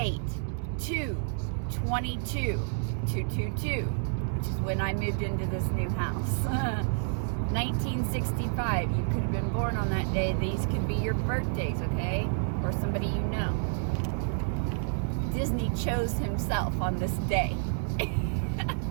2/22/222, which is when I moved into this new house, 1965, you could have been born on that day. These could be your birthdays, okay? Or somebody you know. Disney chose himself on this day.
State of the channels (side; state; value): left; silent; 58 dB below the other